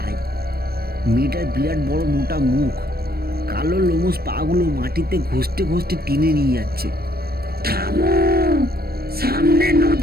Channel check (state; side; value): late; left; 0.45 ms